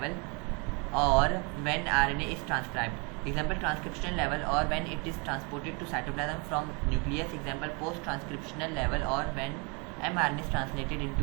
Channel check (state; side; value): quieter; left; 31.8 dB